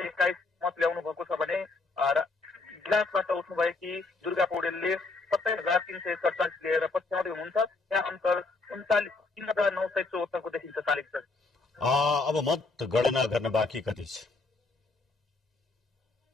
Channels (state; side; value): quieter; right; 3.6 dB